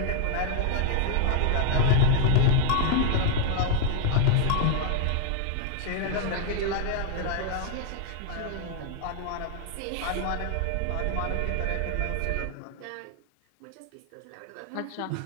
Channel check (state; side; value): different; both; correlation 0.00